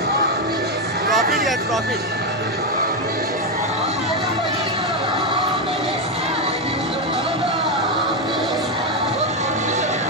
प्रॉफिट घ्या, प्रॉफिट.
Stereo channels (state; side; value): normal; both; correlation 0.07